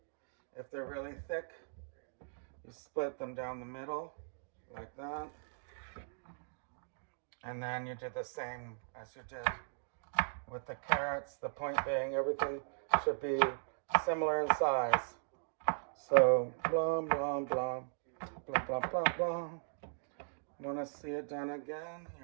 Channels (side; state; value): left; silent; digital silence